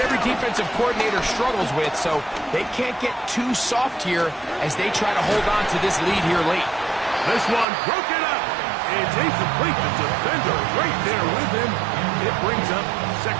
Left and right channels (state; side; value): drops out; left; at 7.7 s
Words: every defensive coordinator struggles with, so they can't get too soft here as they try to hold on to this lead here late. This one broken up. It's incomplete. The defender right there with him. It brings up